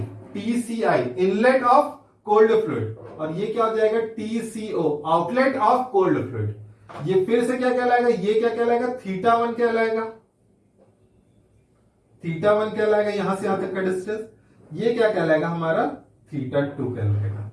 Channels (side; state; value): both; identical; correlation 1.00